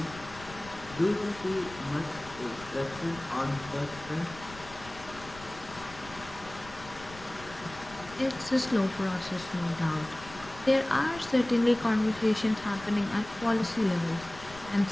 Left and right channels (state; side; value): noise; left; rumble, 17 dB below the sound